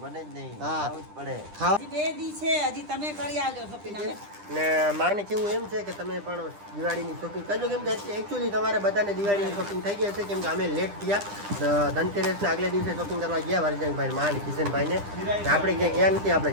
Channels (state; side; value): late; left; 10 ms